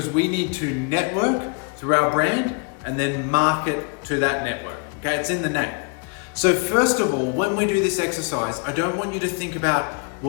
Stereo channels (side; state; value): right; quieter; 35.6 dB